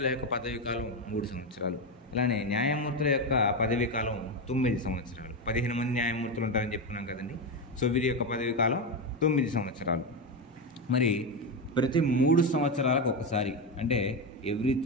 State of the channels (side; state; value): both; normal; correlation 0.12